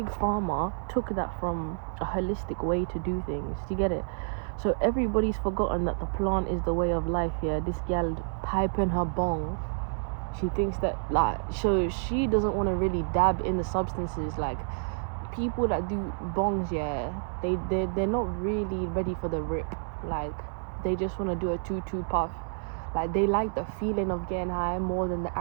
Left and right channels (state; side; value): silent; left; digital silence